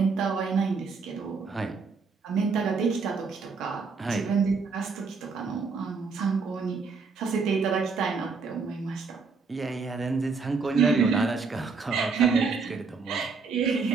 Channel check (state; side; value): quieter; left; 4.8 dB